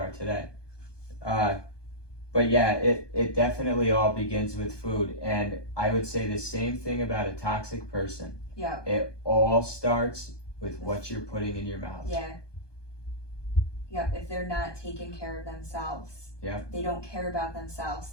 today. But yeah, it definitely all begins with food. And I would say the same thing about a toxic person. Yeah. It all starts with what you're putting in your mouth. Yeah. Yep. If they're not taking care of themselves, they don't care about themselves,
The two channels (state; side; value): late; right; 1.2 ms